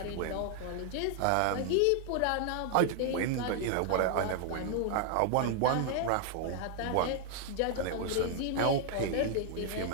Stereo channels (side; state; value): both; different; correlation 0.00